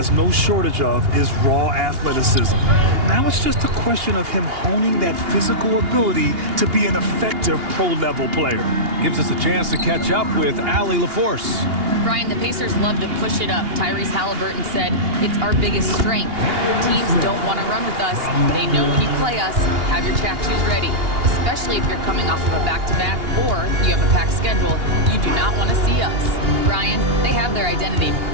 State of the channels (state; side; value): late; left; 2.8 ms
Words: no shortage of is raw athleticism. Now it's just a question of him honing that physical ability to be an effective pro-level player. Gives us a chance to catch up with Allie LaForce. Brian, the Pacers love to push it up. Tyrese Halliburton said it's our biggest strength. Teams don't want to run with us. They know when you play us, have your track shoes ready, especially if you're coming off of a back-to-back or you have a packed schedule. You do not want to see us. Brian, they have their identity.